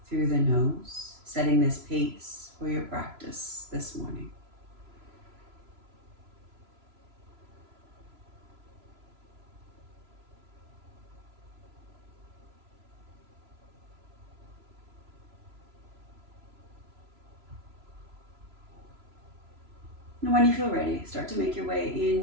through the nose, setting this pace for your practice this morning. And when you feel ready, start to make your way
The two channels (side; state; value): left; late; 3.0 ms